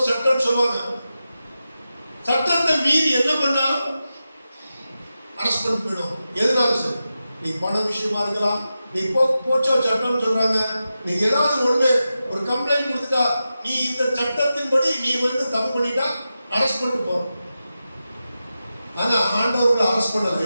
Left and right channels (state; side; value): inverted; both; correlation -0.91